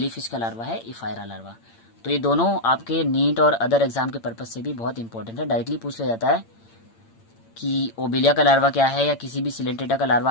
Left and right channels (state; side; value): late; right; 8.8 ms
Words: का लार्वा है इफायरा लार्वा। तो ये दोनों आपके नीट और अदर एग्जाम के पर्पज से भी बहुत इंपॉर्टेंट है। डायरेक्टली पूछ लिया जाता है कि ओबेलिया का लार्वा क्या है, या किसी भी सिलेंट्रेटा का